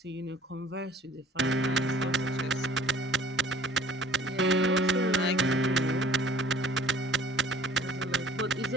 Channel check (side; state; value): both; normal; correlation 0.51